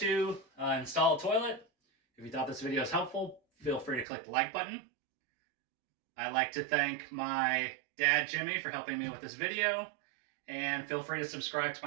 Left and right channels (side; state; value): left; drops out; at 4.0 s